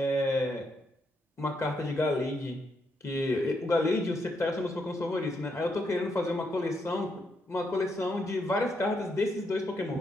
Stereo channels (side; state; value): both; normal; correlation 0.78